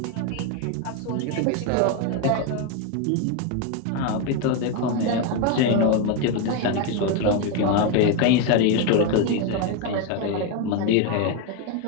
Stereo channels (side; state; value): both; different; correlation 0.02